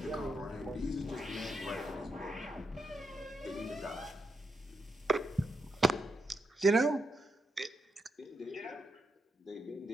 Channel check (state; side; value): normal; both; correlation 0.83